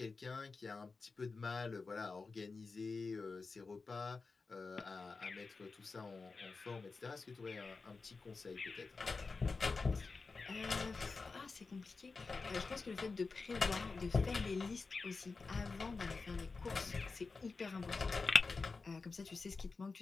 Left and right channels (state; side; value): quieter; right; 4.2 dB